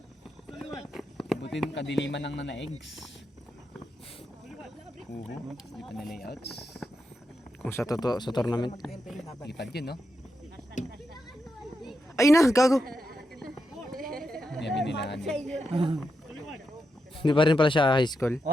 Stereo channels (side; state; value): both; normal; correlation 0.86